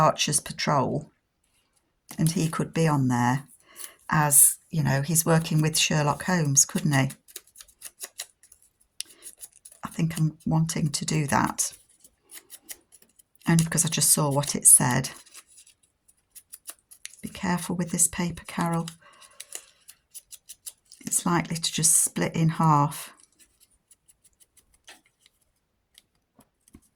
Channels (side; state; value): both; identical; correlation 1.00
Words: Patrol and he could be on there as, you know, he's working with Sherlock Holmes, couldn't he? I think I'm wanting to do that. Only because I just saw what it said. Be careful with this paper, Carol. It's likely to just split in half.